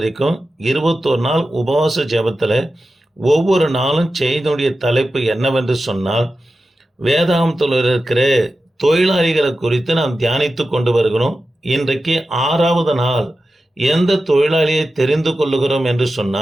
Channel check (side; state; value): both; normal; correlation 0.93